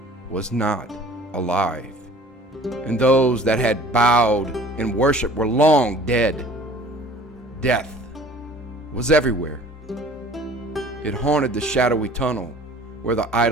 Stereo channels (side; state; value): both; normal; correlation 0.49